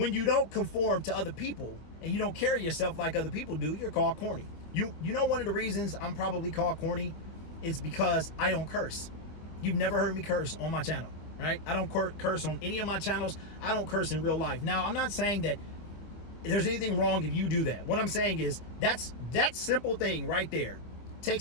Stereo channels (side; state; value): right; late; 25 ms